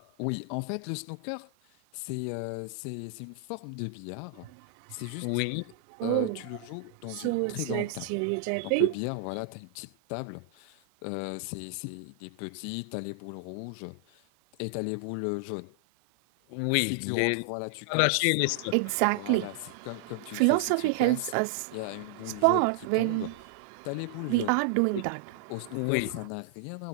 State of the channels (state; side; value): different; both; correlation -0.01